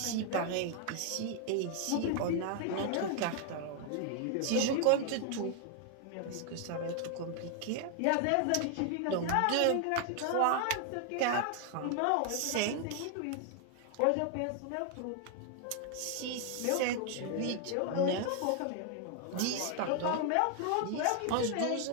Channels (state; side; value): different; both; correlation 0.00